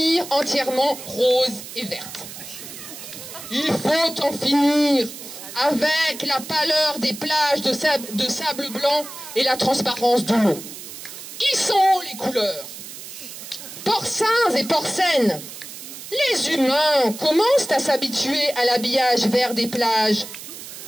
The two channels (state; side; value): noise; right; hiss, 12 dB below the sound